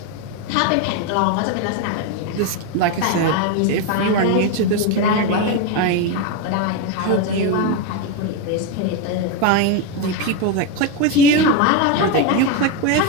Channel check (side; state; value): both; different; correlation 0.03